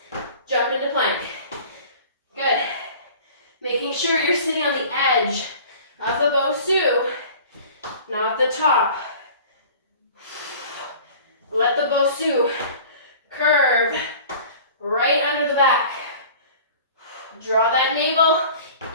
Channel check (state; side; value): inverted; both; correlation -0.44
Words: jump into plank. Good. Making sure you're sitting on the edge of the Bosu, not the top. Let the Bosu curve right under the back. Draw that navel